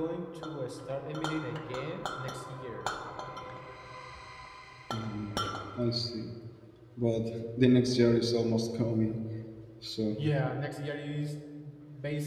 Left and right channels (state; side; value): identical; both; correlation 1.00